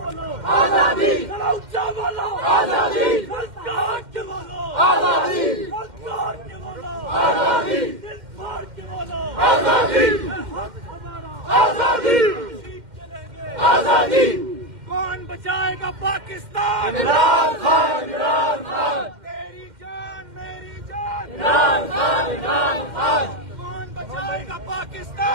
आजादी ऊंचा बोलो, आजादी सरकार के बोलो, आजादी सरकार के बोलो, आजादी दिल फाड़ के बोलो, आजादी आजादी आजादी। कौन बचाएगा पाकिस्तान? इमरान खान, इमरान खान। तेरी जान मेरी जान, इमरान खान, इमरान खान। कौन बचाएगा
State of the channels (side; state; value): left; late; 2.1 ms